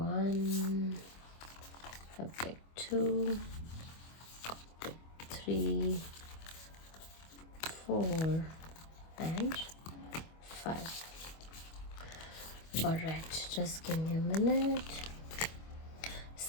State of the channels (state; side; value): late; right; 25 ms